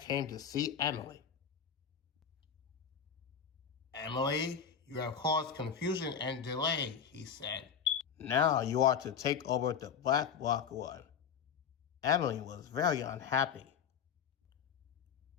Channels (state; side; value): quieter; right; 7.3 dB